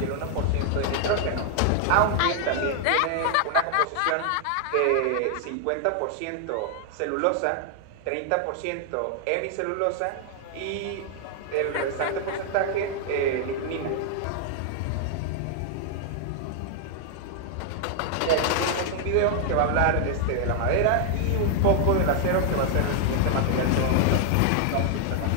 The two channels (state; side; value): different; both; correlation 0.00